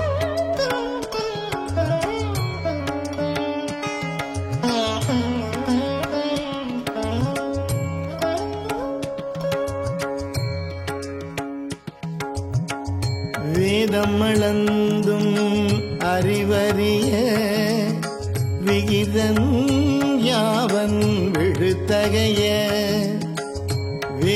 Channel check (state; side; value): identical; both; correlation 1.00